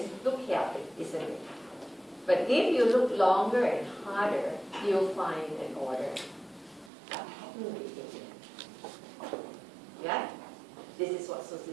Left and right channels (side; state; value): left; drops out; at 6.9 s